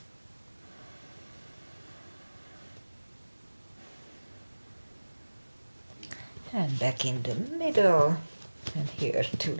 And back in the middle, and here too,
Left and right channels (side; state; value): both; inverted; correlation -1.00